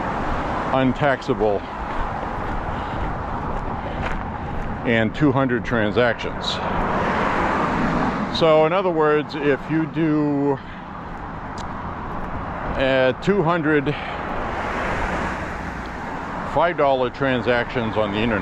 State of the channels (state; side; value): identical; both; correlation 1.00